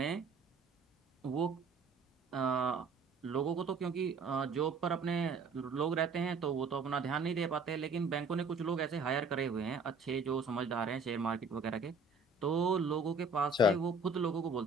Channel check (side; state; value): left; quieter; 3.5 dB